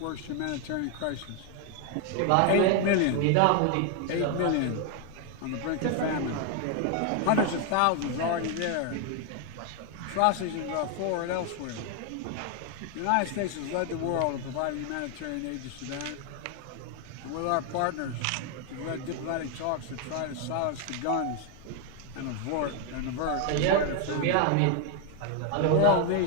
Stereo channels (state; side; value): different; both; correlation 0.01